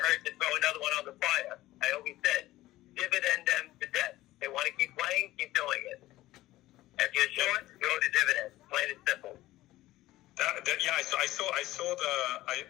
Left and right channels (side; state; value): right; quieter; 16.5 dB